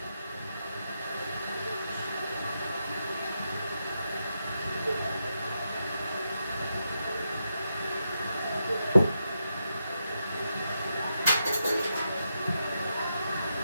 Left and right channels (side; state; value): both; inverted; correlation -0.85